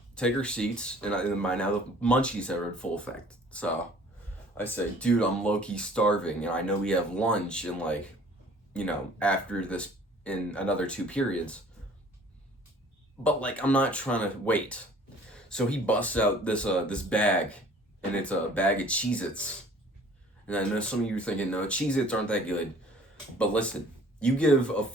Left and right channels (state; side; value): normal; both; correlation 0.52